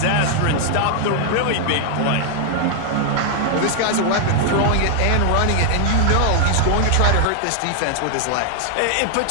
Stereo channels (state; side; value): different; both; correlation 0.00